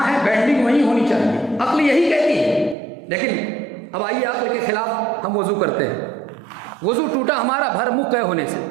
ہے بینڈنگ وہیں ہونی چاہیے. عقل یہی کہتی ہے. لیکن اب آئیے عقل کے خلاف ہم وضو کرتے ہیں. وضو ٹوٹا ہمارا بھر منہ قے ہونے سے،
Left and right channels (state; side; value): drops out; left; at 2.8 s